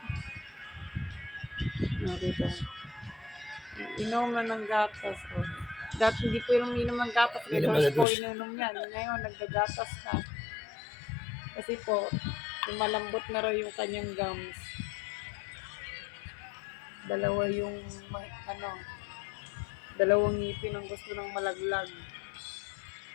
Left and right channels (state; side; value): drops out; right; at 8.1 s